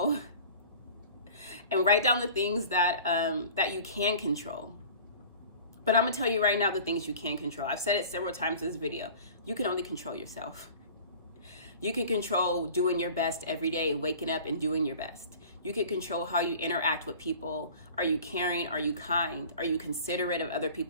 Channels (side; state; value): both; inverted; correlation -0.43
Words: And write down the things that that you can control. But I'm gonna tell you right now the things you can control. I've said it several times in this video. You can only control yourself. You can control doing your best every day, waking up and doing your best. You can control how you interact with people. Are you caring? Are you kind? Are you considerate of other